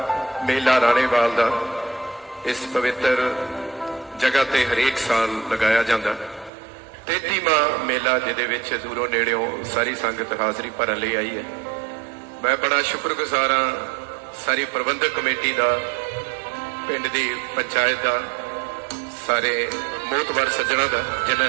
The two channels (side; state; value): left; drops out; at 6.5 s